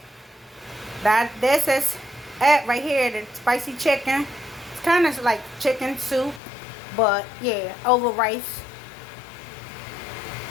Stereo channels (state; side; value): drops out; right; at 6.4 s